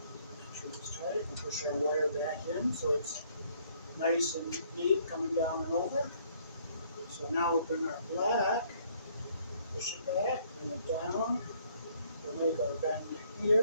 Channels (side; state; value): both; inverted; correlation -0.64